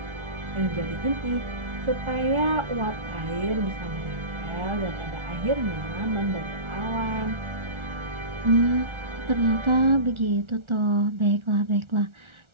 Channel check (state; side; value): late; left; 1.4 ms